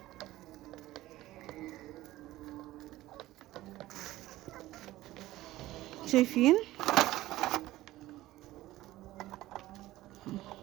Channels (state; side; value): quieter; left; 16.3 dB